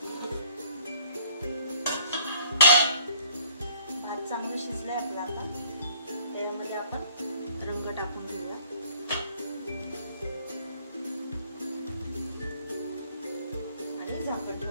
भात चांगलं शिजलाय आपला. आता त्यामध्ये आपण रंग टाकून घेऊया. आणि झाकण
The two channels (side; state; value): both; inverted; correlation -0.59